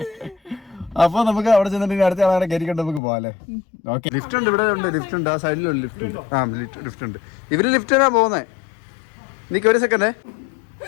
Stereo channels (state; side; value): drops out; right; at 3.0 s